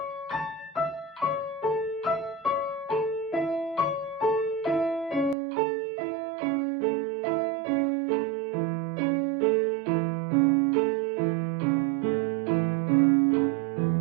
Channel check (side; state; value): left; drops out; at 5.4 s